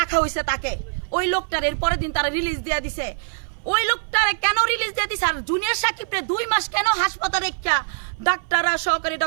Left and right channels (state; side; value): silent; left; 57 dB below the other